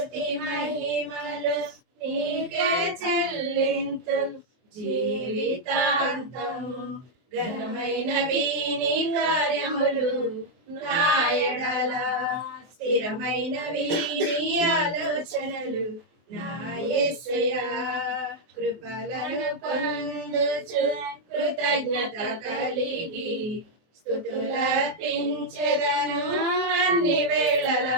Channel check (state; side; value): late; left; 24 ms